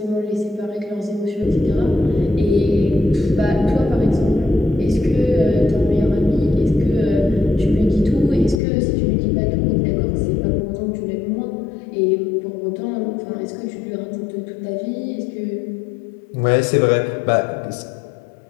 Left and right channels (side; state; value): right; drops out; at 8.6 s